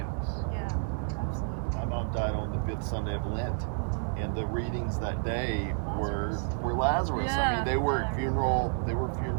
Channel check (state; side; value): silent; left; digital silence